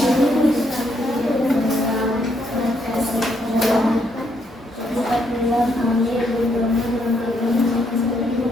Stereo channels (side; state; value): both; normal; correlation 0.74